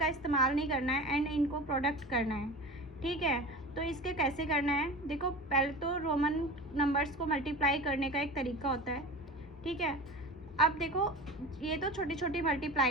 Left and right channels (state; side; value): normal; both; correlation 0.34